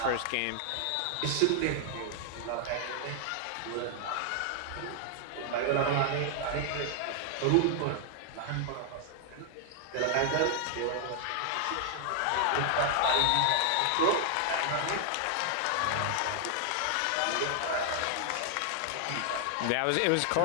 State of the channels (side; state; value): both; different; correlation 0.00